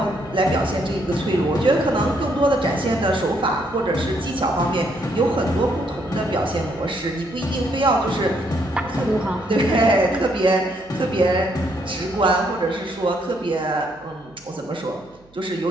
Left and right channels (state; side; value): noise; right; hum, 29 dB below the sound